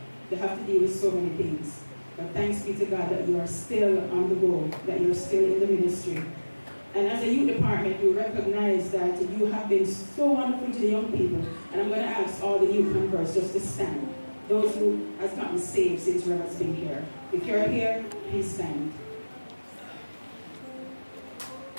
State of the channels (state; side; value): inverted; both; correlation -1.00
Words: They have to deal with so many things. But thanks be to God that you are still on the go, that you're still in the ministry. And as a youth department, you recognize that you have been so wonderful to the young people. And I'm going to ask all the youth converts just to stand. Those who have gotten saved since Reverend's been here. If you're here, please stand.